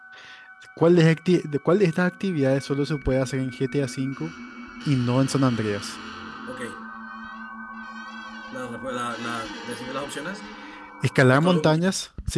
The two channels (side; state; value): both; identical; correlation 1.00